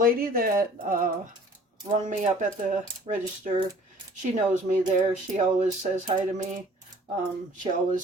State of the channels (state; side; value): normal; both; correlation 0.51